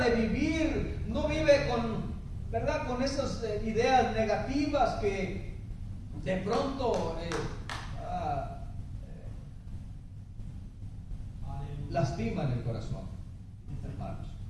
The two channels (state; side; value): identical; both; correlation 1.00